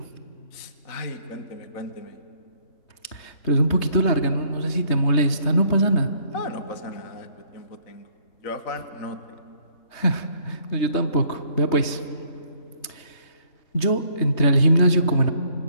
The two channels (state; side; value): late; right; 3.2 ms